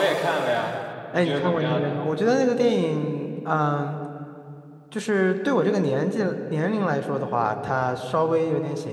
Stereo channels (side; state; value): both; identical; correlation 1.00